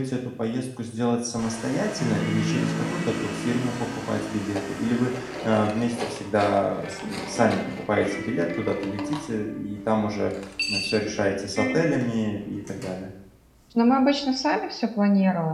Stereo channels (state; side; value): identical; both; correlation 1.00